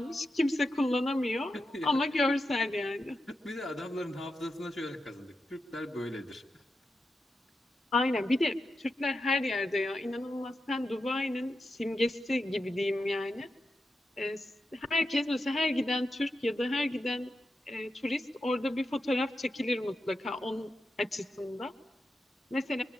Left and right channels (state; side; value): normal; both; correlation 0.89